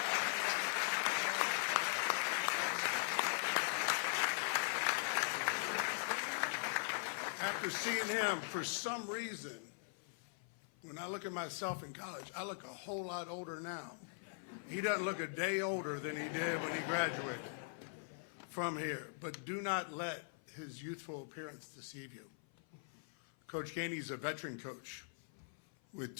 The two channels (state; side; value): silent; right; 50 dB below the other